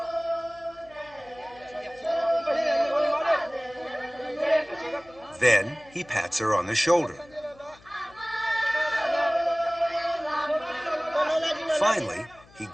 Then he pats her on the shoulder. Finally, he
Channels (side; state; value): left; noise; hum, 26 dB below the sound